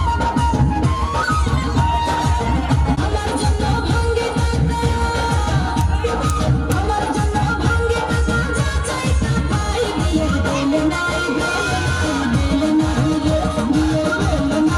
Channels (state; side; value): identical; both; correlation 1.00